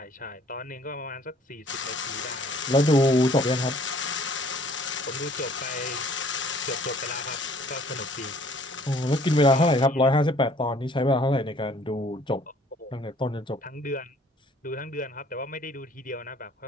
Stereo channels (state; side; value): normal; both; correlation 0.57